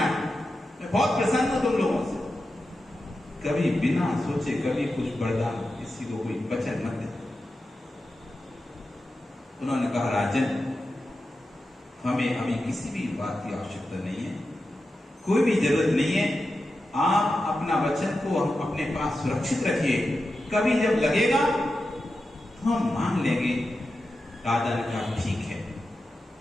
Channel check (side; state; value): both; normal; correlation 0.91